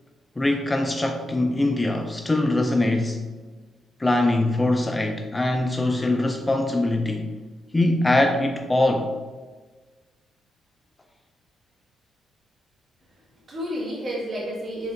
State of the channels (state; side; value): normal; both; correlation 0.90